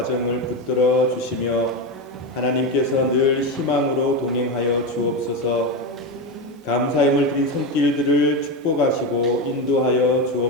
붙들어 주시며 하나님께서 늘 희망으로 동행하여 주옵소서. 감사함을 드린 손길들을 축복하시고 인도하여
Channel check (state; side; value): normal; both; correlation 0.15